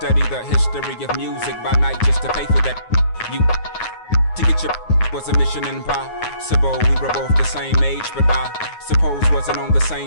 the history of music. By night, just to pay for that. You to get your was a mission impossible. We were both the same age, but I suppose wasn't on the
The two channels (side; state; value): right; late; 9.5 ms